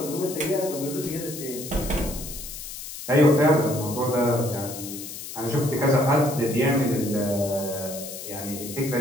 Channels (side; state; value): left; noise; hiss, 10 dB below the sound